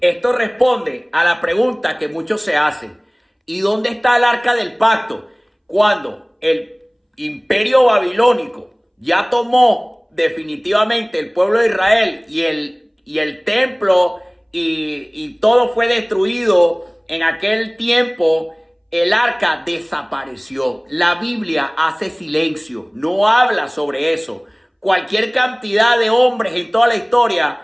Esto responde a la pregunta que muchos se hacen. ¿Y dónde está el arca del pacto? Cuando el imperio babilónico ya tomó definitivamente el pueblo de Israel y el templo y todo fue destruido en aquel tiempo, el arca desapareció. La Biblia hace silencio, no habla sobre eso. Cualquier cantidad de hombres en toda la historia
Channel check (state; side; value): identical; both; correlation 1.00